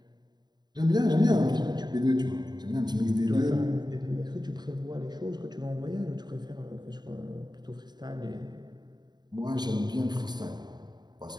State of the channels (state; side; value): late; left; 0.20 ms